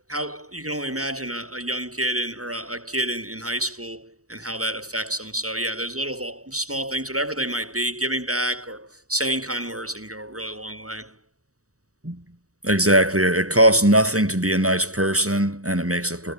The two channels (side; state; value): left; late; 0.65 ms